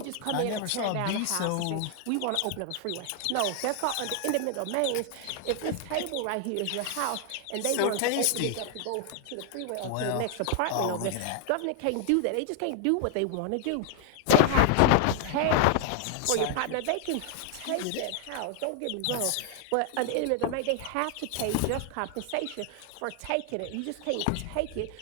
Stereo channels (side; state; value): both; different; correlation 0.00